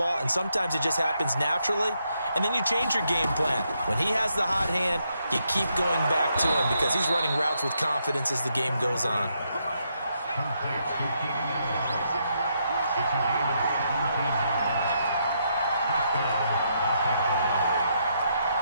and sometimes it just happens naturally. And then you change your game plan. When he has the hot hand, you keep going back to him because he's running routes with confidence as the game goes on.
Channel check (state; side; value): inverted; both; correlation -0.78